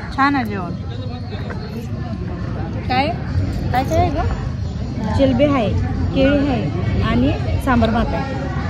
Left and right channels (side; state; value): both; identical; correlation 1.00